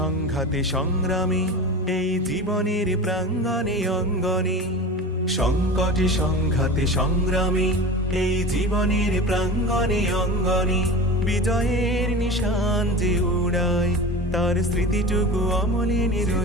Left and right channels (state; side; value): normal; both; correlation 0.32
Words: সংগ্রামে এই জীবনের প্রাঙ্গণে অঙ্গনে, সংকটে সংঘাতে সংগ্রামে এই জীবনের প্রাঙ্গণে অঙ্গনে, বিজয়ের নিশান যে উড়ায় তার স্মৃতিটুকু অমলিনী